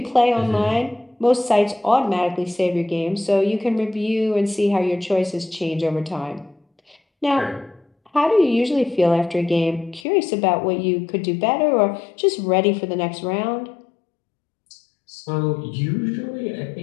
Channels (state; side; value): drops out; right; at 10.1 s